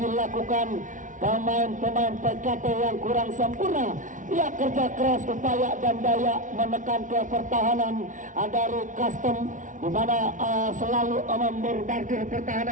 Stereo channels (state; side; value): late; left; 0.37 ms